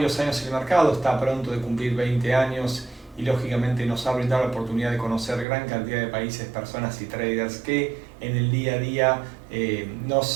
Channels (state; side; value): drops out; left; at 5.5 s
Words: años en el mercado, está pronto de cumplir 20 años y lógicamente nos ha brindado la oportunidad de conocer gran cantidad de países, personas y traders que en el día a día